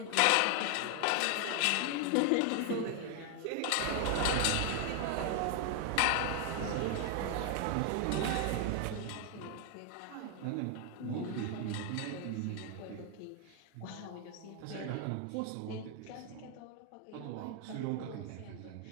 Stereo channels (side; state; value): both; different; correlation 0.00